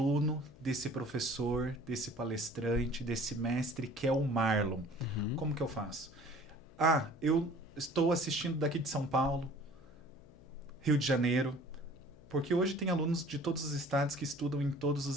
desse professor, desse palestrante, desse mestre que é o Marlon. Uhum. Como que eu faço? Eu estou assistindo daqui de São Paulo, Rio de Janeiro, porque hoje tem alunos de todos os estados que estudam em todos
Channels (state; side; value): noise; left; hum, 23 dB below the sound